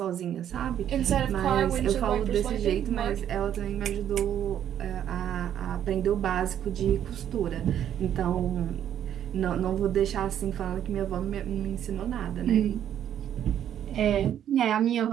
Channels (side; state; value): left; quieter; 10.2 dB